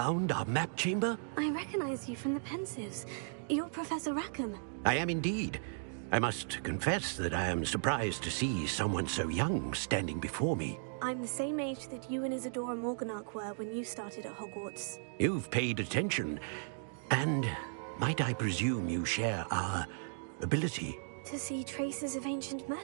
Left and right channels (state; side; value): silent; left; digital silence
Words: our map chamber? I recognize you from the Pensives. You're Professor Rackham. I am indeed. I must confess that I am surprised to see someone so young standing before me. I'm the same age that you and Isadora Morganach were when you started at Hogwarts. You've paid attention, and might I presume you share our ability? To see traces of ancient